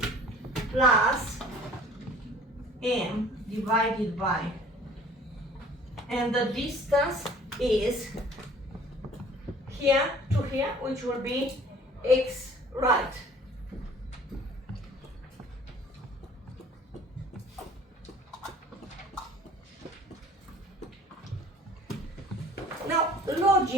Plus M divided by, and the distance is here to here, which will be X right. Now,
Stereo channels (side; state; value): both; normal; correlation 0.50